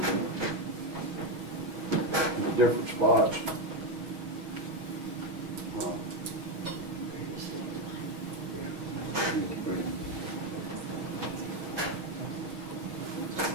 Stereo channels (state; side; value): late; left; 6.4 ms